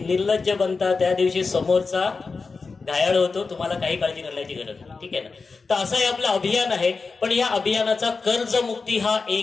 बनता त्या दिवशी समोरचा घायाळ होतो, तुम्हाला काही काळजी करण्याची गरज नाही. ठीक आहे ना. तर असं हे आपलं अभियान आहे. पण या अभियानाचा कर्जमुक्ती हा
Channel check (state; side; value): quieter; right; 4.4 dB